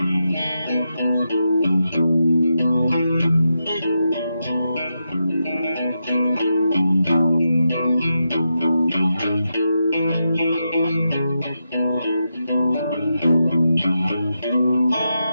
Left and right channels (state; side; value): inverted; both; correlation -0.86